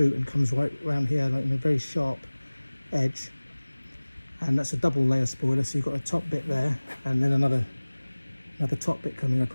and comes right around here, like in a very sharp edge, and that's a double layer spoiler. So you've got a top bit there, and then another top bit coming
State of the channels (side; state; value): both; inverted; correlation -1.00